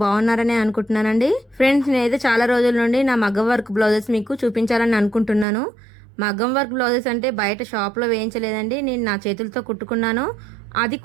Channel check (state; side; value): drops out; left; at 5.5 s